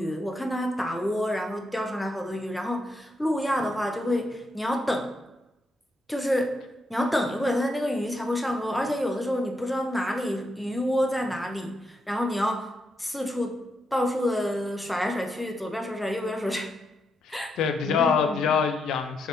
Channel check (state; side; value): normal; both; correlation 0.81